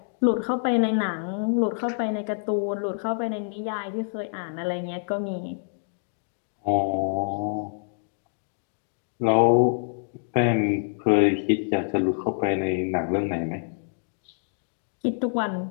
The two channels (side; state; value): right; silent; digital silence